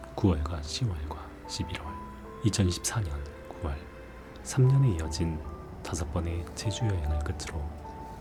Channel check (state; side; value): identical; both; correlation 1.00